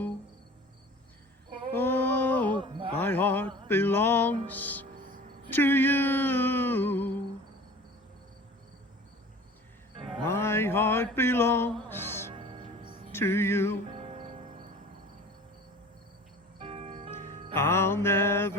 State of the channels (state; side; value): normal; both; correlation 0.42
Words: Oh, my heart belongs to you. My heart belongs to you. I'll